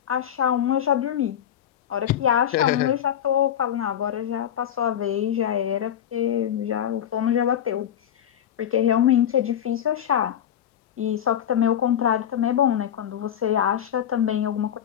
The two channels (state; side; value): quieter; right; 9.9 dB